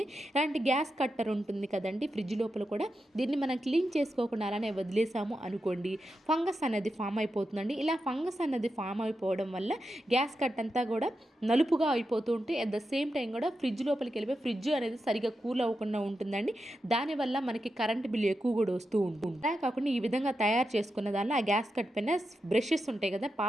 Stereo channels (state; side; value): normal; both; correlation 0.88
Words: ఇలాంటి గ్యాస్ కట్టర్ ఉంటుంది కదండి ఫ్రిడ్జ్ లోపల కూడా, దీన్ని మనం క్లీన్ చేసుకోకుండా అలానే వదిలేసాము అనుకోండి, ఫంగస్ అనేది ఫామ్ అయిపోతుందండి. ఇలా ఫంగస్ అనేది ఫామ్ అయిపోవడం వల్ల గ్యాస్ కట్ అంతా కూడా నలుపుగా అయిపోతూ ఉంటే అట్ ద సేమ్ టైం కూడా ఫ్రిడ్జ్ లోపలికి వెళ్ళిపోయి ఫ్రిడ్జ్ అనేది సరిగా కూల్ అవ్వకుండా ఉంటుందండి. దానివల్ల మనకి కరెంట్ బిల్ ఎక్కువ కూడా వస్తూ ఉంటుంది. అలా కాకుండా ఈ విధంగా తయారు చేసుకున్న దానిలో ఆ గ్యాస్ కట్ పైన బ్రషెస్ ఉంటాయి కదా,